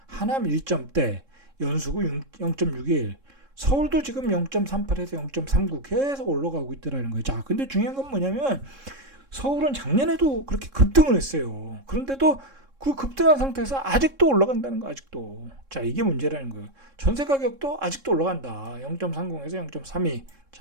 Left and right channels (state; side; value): late; left; 3.7 ms